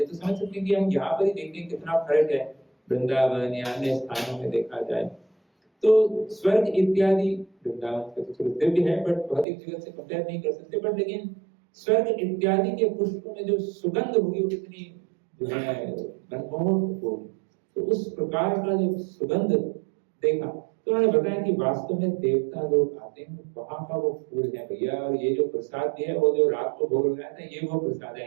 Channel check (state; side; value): drops out; left; at 9.5 s